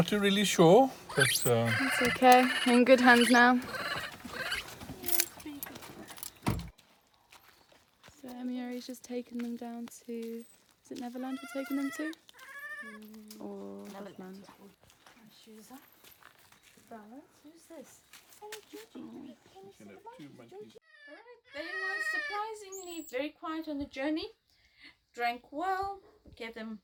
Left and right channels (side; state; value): both; identical; correlation 1.00